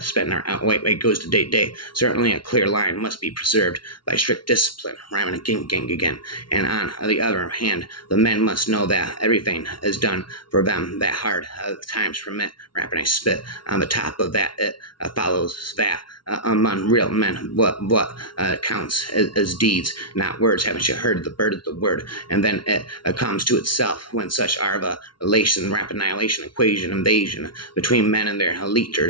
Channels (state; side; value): late; right; 0.72 ms